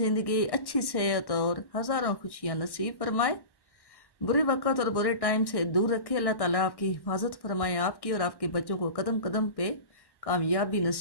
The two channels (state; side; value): late; right; 1.1 ms